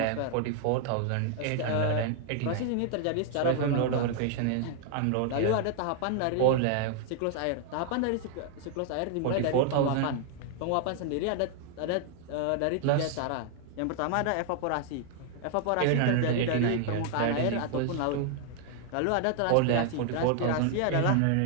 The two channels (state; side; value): different; both; correlation 0.00